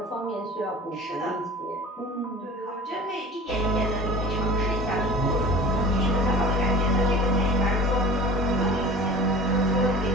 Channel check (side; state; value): both; normal; correlation 0.40